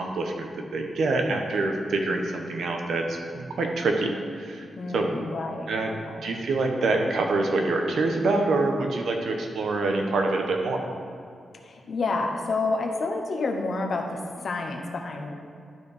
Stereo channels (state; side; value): normal; both; correlation 0.82